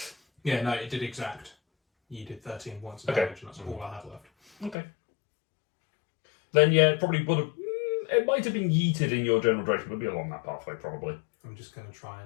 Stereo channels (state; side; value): drops out; right; at 4.8 s